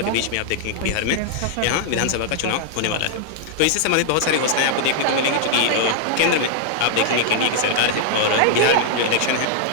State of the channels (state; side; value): different; both; correlation -0.01